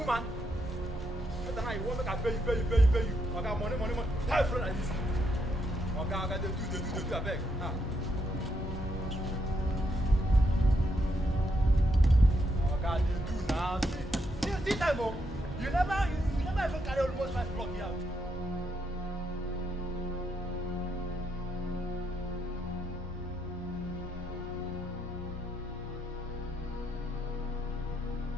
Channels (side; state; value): both; normal; correlation 0.78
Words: Better now you won't make a pay you. Okay, money. Time front like this. Okay, they do, I beg. Ah. Okay, they do now. See time, oh. You never even carry almost 5 block here.